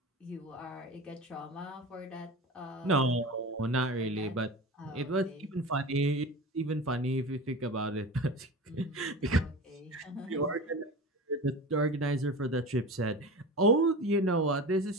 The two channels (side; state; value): both; normal; correlation 0.30